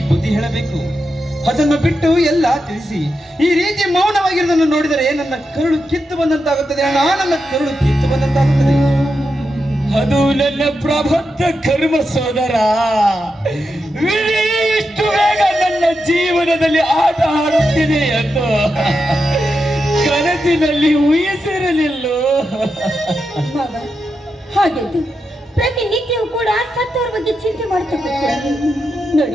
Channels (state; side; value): normal; both; correlation 0.87